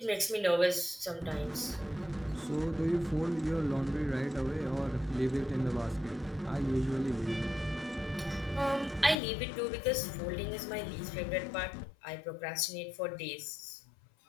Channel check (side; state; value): right; drops out; at 9.2 s